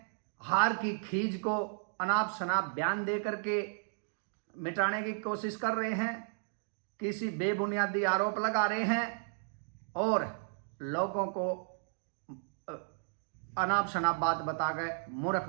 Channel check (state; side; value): silent; left; digital silence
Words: हार की खीज को अनाप शनाप बयान दे करके मिटाने की कोशिश कर रहे हैं, किसी बेबुनियादी आरोप लगा रहे हैं और लोगों को अनाप शनाप बात बताकर मूर्ख